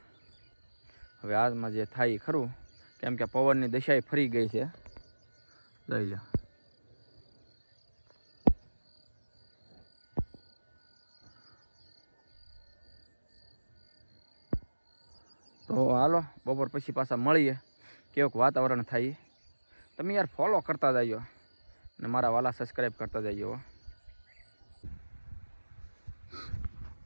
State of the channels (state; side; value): inverted; both; correlation -1.00